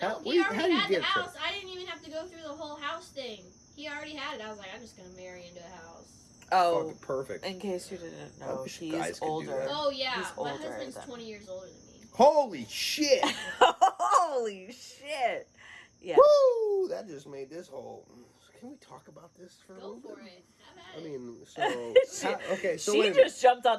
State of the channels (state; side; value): identical; both; correlation 1.00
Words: How- he how already do you had the get a trailer? house. I didn't even have to go through the whole house thing. He already had it. I was like, I'm just gonna marry into a house. Oh, Fucking perfect. in case you didn't I know, wish he's guys could do older. that. Oh yeah, He's my older husband's than- 20 years older than me. Holy shit! Holy shit! Yeah. Woo! That just made this whole. Can we talk about this for a Go little for bit? it. Have at I it. mean, so She- so she wait a minute. just jumped